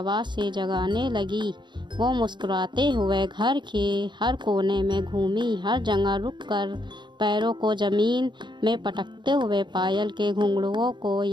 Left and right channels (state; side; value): late; left; 0.22 ms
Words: से जगाने लगी। वो मुस्कुराते हुए घर के हर कोने में घूमी, हर जगह रुककर पैरों को ज़मीन में पटकते हुए पायल के घुंघरुओं को